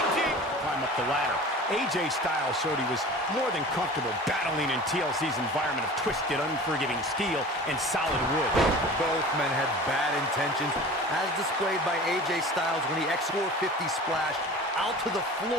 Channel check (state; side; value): normal; both; correlation 0.39